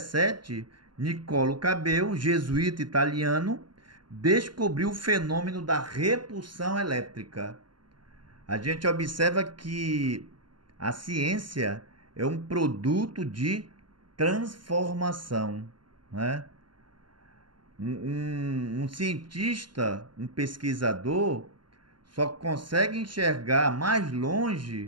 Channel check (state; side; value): late; left; 0.72 ms